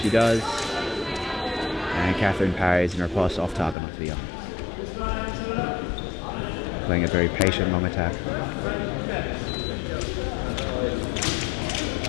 does. And Catherine parries and riposte off target onto the arm. Playing a very patient long attack.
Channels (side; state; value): right; drops out; at 3.8 s